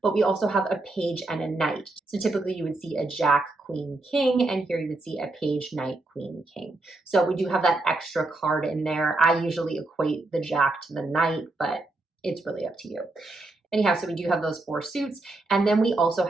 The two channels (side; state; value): left; quieter; 3.0 dB